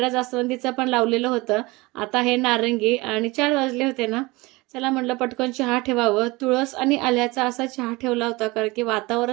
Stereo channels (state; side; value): quieter; left; 22.7 dB